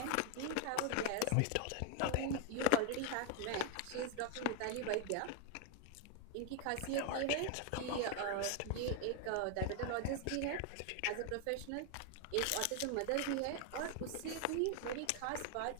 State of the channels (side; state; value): both; different; correlation 0.00